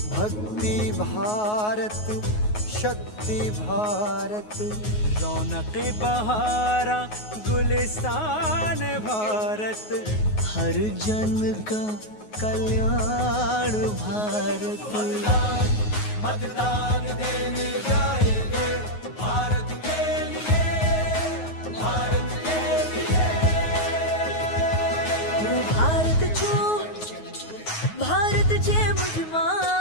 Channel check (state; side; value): late; right; 9.4 ms